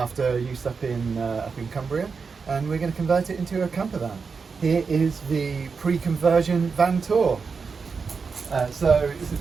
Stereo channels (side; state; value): left; quieter; 5.2 dB